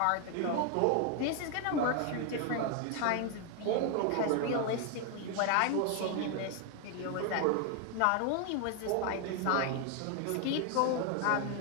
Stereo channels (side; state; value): both; different; correlation 0.01